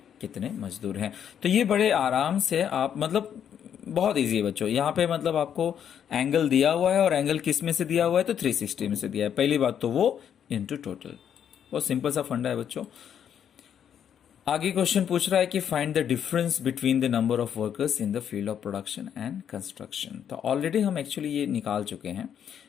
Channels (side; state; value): right; quieter; 8.8 dB